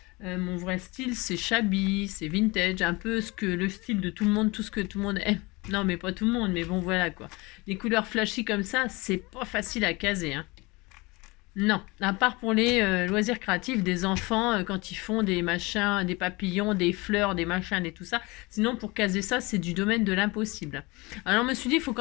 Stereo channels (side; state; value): right; quieter; 24.4 dB